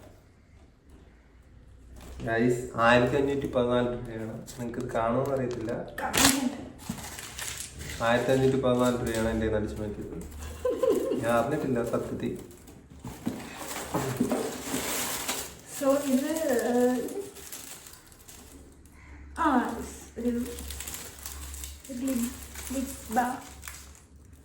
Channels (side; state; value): both; identical; correlation 1.00